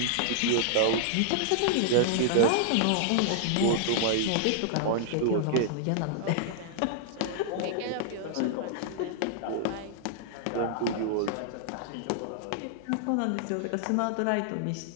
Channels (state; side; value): different; both; correlation -0.01